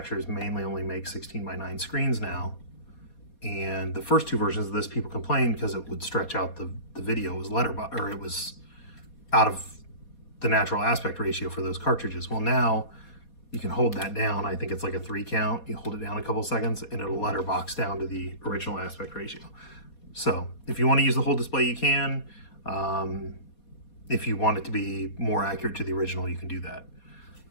mainly only make 16:9 screens now. And the first two versions of this, people complained because it would stretch out the video. It was it was out of the natural aspect ratio for those cartridges. Well, now you can hold that down. I think it's like a 3 count. You hold it down a couple seconds and it'll letterbox down to the original aspect ratio. So if you want to use the whole display, you can. If you want it to be more accurate to the original, you can do that.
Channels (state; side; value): late; right; 4.2 ms